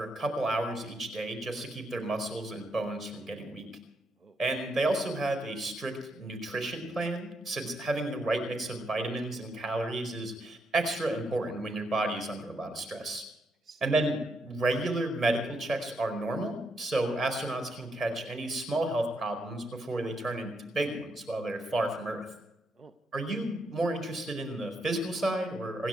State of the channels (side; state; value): both; normal; correlation 0.78